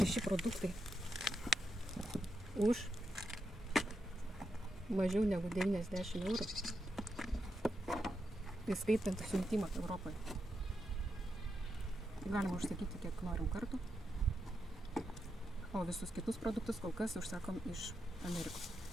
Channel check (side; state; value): both; normal; correlation 0.85